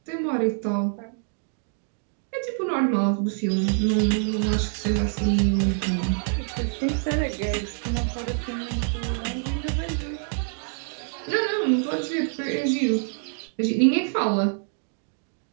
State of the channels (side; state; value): left; silent; digital silence